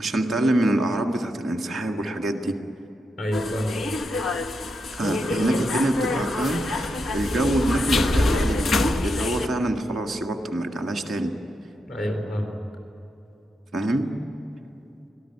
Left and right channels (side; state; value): both; normal; correlation 0.84